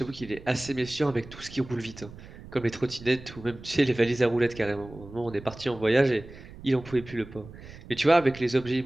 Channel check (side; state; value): right; noise; rumble, 17 dB below the sound